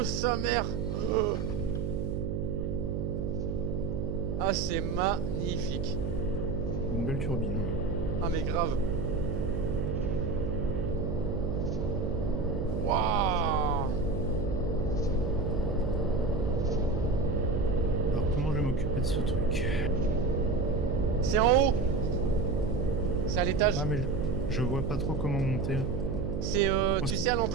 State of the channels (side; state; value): right; noise; hum, 2 dB below the sound